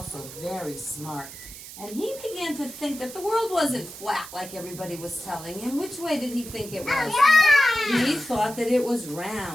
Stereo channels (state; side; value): noise; right; hiss, 13 dB below the sound